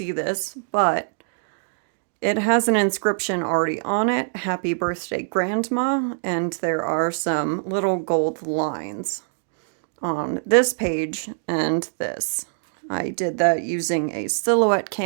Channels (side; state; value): left; silent; digital silence